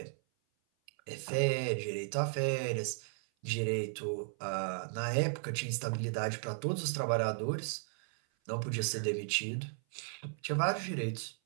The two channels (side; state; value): left; silent; 54 dB below the other